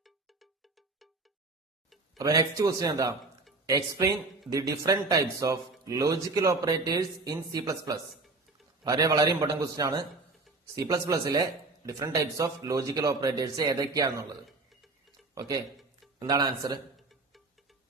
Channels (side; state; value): left; quieter; 3.5 dB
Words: അപ്പൊ നെക്സ്റ്റ് ക്വസ്റ്റ്യൻ എന്താ? Explain the different types of logical operators in C++. വളരെ ഇമ്പോർട്ടന്റ് ക്വസ്റ്റ്യൻ ആണ്. C++ലെ different types of logical operators ഏതൊക്കെയാണെന്നുള്ളത്. ഓക്കെ, എന്താണ് ആൻസർ?